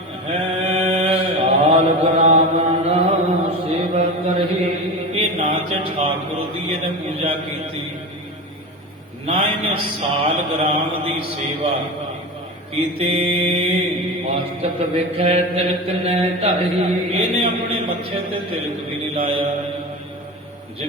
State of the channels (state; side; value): normal; both; correlation 0.27